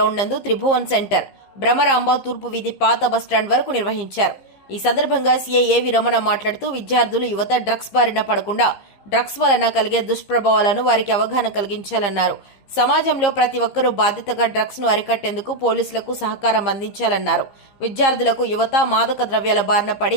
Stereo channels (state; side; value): late; right; 15 ms